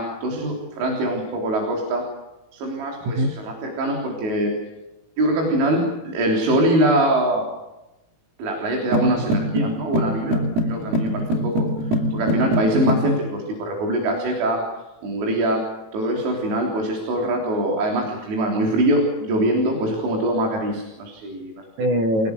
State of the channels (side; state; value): left; late; 18 ms